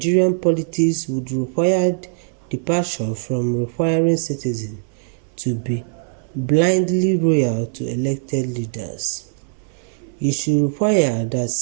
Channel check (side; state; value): left; silent; 59 dB below the other